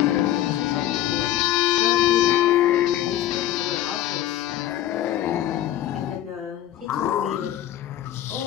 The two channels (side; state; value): right; quieter; 12.9 dB